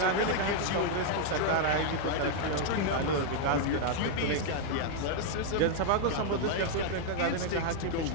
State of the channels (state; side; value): different; both; correlation 0.00